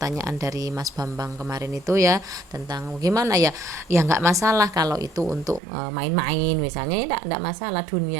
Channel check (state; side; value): drops out; left; at 5.6 s